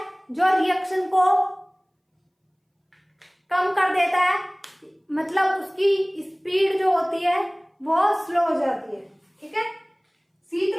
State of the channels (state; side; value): identical; both; correlation 1.00